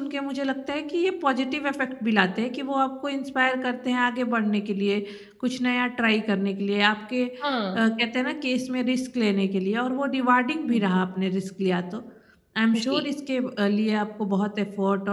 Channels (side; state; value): both; identical; correlation 1.00